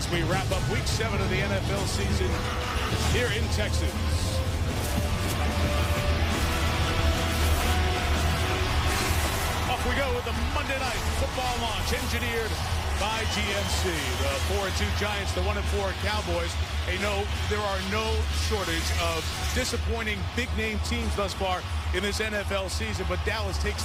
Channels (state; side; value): identical; both; correlation 1.00